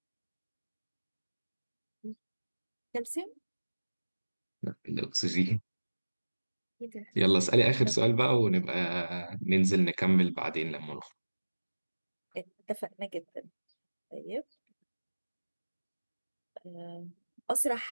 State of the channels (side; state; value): both; inverted; correlation -1.00